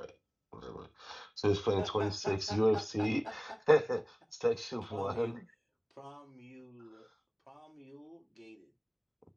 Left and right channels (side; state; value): both; identical; correlation 1.00